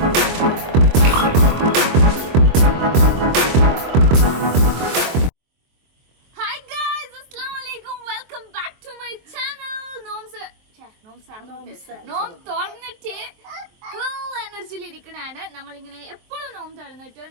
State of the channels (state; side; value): late; left; 23 ms